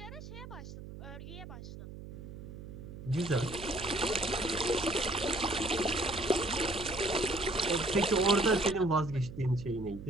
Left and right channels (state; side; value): noise; right; hum, 12 dB below the sound